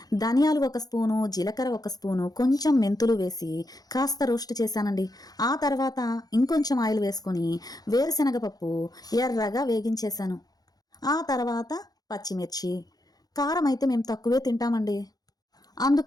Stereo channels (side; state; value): right; late; 0.19 ms